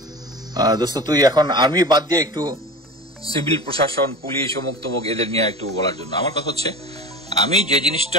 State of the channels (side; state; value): both; normal; correlation 0.33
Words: দোস্ত তুই এখন আর্মি বাদ দিয়ে একটু সিভিল প্রশাসন, পুলিশ, অমুক তমুক এদের নিয়ে একটু বলার জন্য। আমার কথা হচ্ছে আমি যে